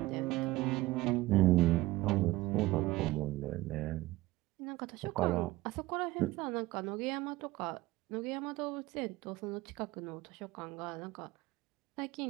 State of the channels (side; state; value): left; quieter; 18.6 dB